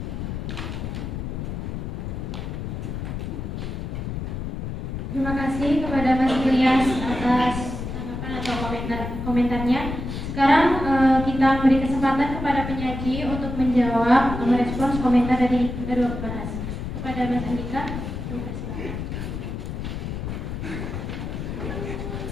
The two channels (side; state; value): left; noise; rumble, 5 dB below the sound